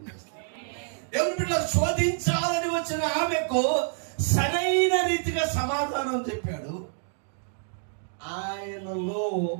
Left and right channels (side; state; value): left; silent; digital silence